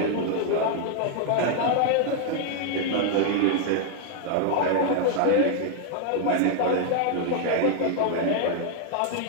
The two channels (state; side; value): different; both; correlation 0.00